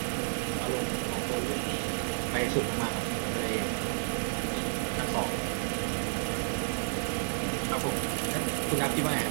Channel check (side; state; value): left; silent; digital silence